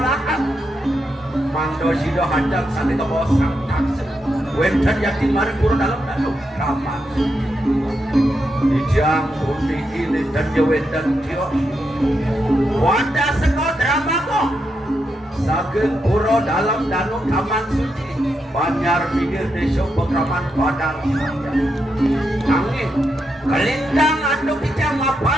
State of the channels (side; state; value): both; normal; correlation 0.84